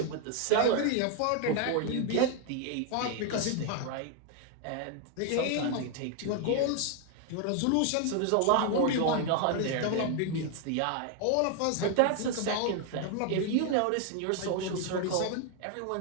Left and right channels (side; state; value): both; different; correlation 0.00